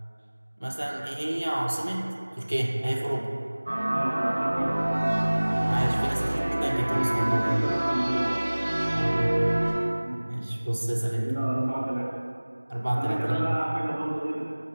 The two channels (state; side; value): inverted; both; correlation -1.00